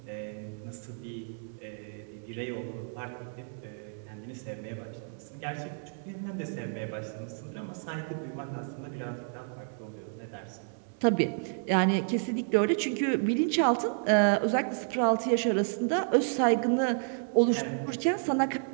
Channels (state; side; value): silent; left; 57 dB below the other